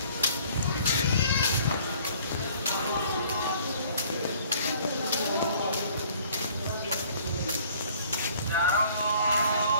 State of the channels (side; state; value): both; inverted; correlation -0.55